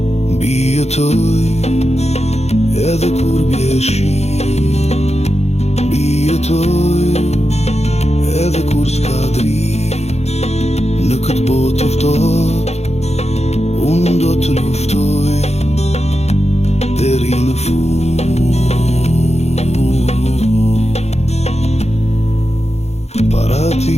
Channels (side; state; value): right; late; 0.31 ms